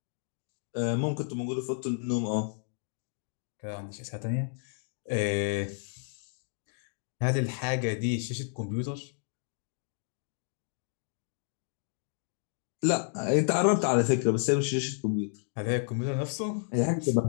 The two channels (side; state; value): right; silent; digital silence